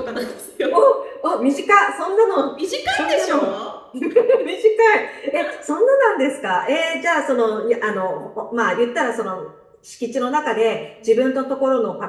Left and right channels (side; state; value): both; identical; correlation 1.00